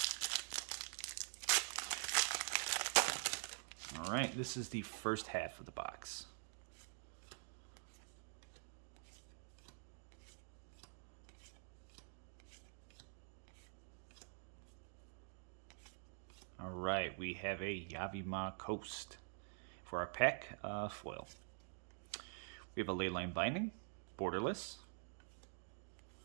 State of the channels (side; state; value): left; silent; digital silence